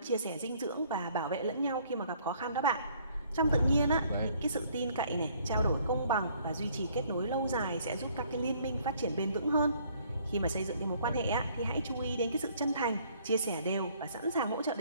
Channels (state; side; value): inverted; both; correlation -0.61